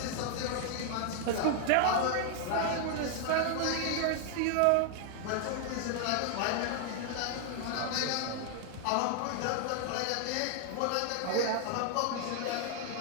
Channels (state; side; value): different; both; correlation 0.00